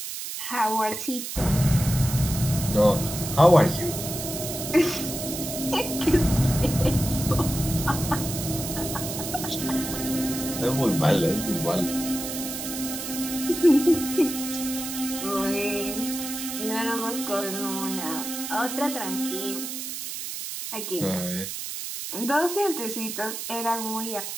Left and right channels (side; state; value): right; noise; hiss, 6 dB below the sound